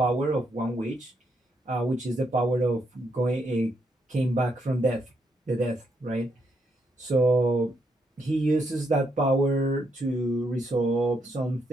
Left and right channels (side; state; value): both; normal; correlation 0.77